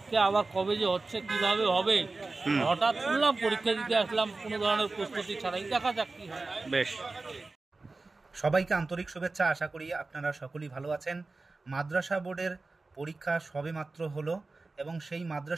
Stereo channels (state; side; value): quieter; left; 3.5 dB